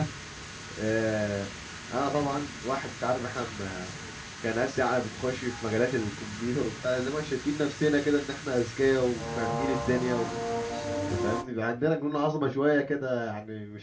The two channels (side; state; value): both; identical; correlation 1.00